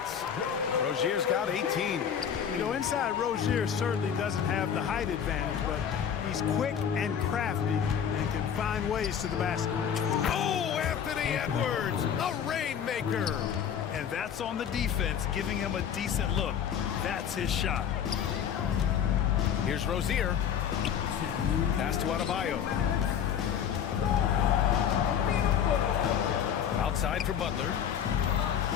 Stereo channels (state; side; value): quieter; right; 8.4 dB